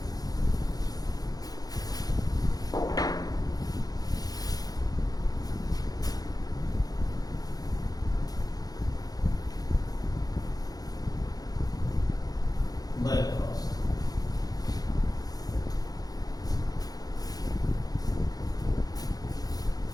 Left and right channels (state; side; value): late; right; 0.18 ms